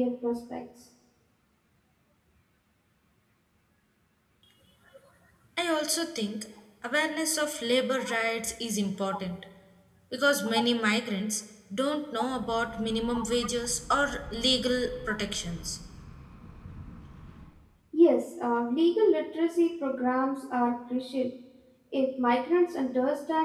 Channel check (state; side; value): identical; both; correlation 1.00